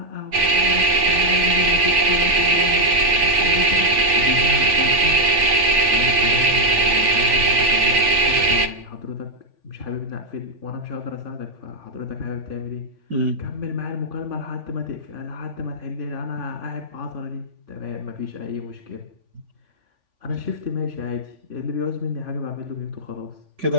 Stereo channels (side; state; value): left; late; 3.5 ms